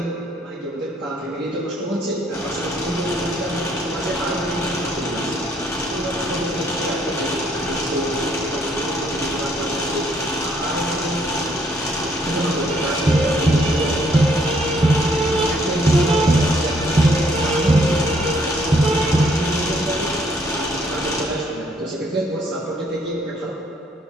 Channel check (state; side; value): normal; both; correlation 0.67